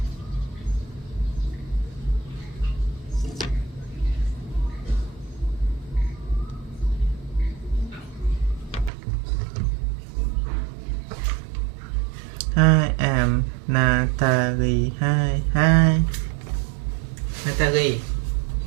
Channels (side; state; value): left; drops out; at 8.9 s